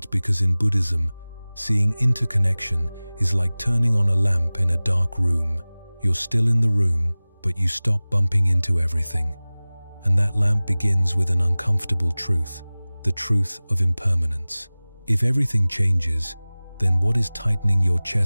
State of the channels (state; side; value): inverted; both; correlation -0.99